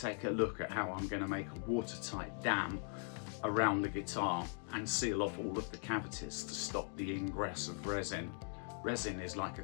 a look at how I'm going to make a watertight dam around the guitar and seal off all of the cavities to stop the ingress of resin. Resin is like a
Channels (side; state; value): right; silent; 51 dB below the other